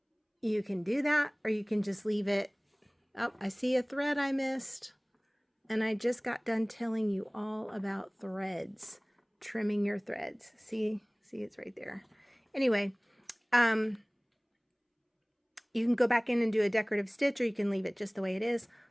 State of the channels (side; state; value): both; identical; correlation 1.00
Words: you can do that, or you can just leave it. Oh, I see a thread I missed. And I just got done telling you all about threads, trimming your threads. See, it's right there. Anyway, you can go back in and do a decorative stitch, or you can leave it just the way it is.